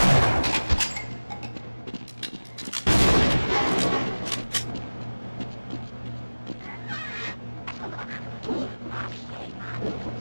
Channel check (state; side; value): inverted; both; correlation -1.00